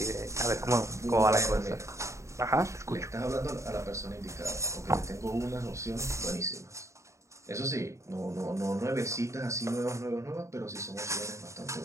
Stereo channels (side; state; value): left; late; 0.14 ms